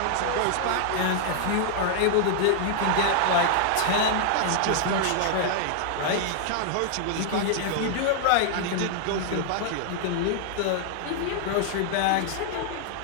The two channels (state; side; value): different; both; correlation -0.01